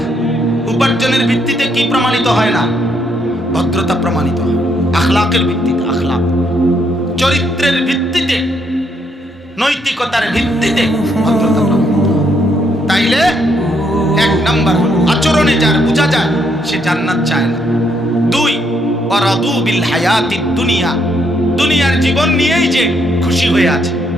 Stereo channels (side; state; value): both; normal; correlation 0.73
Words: উপার্জনের ভিত্তিতে কি প্রমাণিত হয় না? ভদ্রতা প্রমাণিত হয়। আখলাকের ভিত্তিতে, আখলাক, চরিত্রের ভিত্তিতে, নৈতিকতার ভিত্তিতে ভদ্রতা প্রমাণিত। তাইলে 1 নাম্বার আচরণে যার বোঝা যায় সে জান্নাত চায় না। 2, ওয়ারাদু বিল হায়াতিদ দুনিয়া, দুনিয়ার জীবন নিয়েই যে খুশি হয়ে আছে,